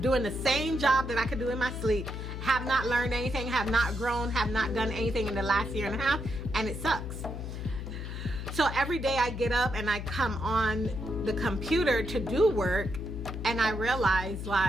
doing the same job that I could do in my sleep, have not learned anything, have not grown, have not done anything in the last year and a half, and it sucks. So every day I get up and I come on the computer to do work, and I realize,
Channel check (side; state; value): left; noise; hum, 6 dB below the sound